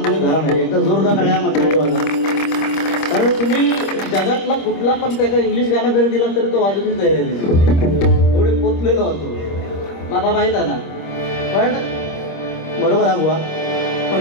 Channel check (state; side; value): late; right; 25 ms